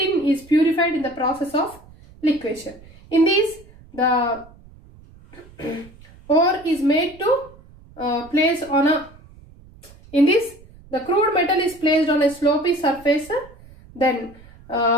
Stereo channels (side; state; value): right; noise; rumble, 23 dB below the sound